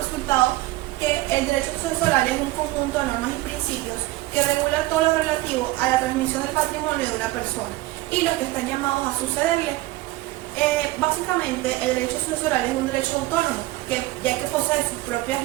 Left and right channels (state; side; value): quieter; left; 18.5 dB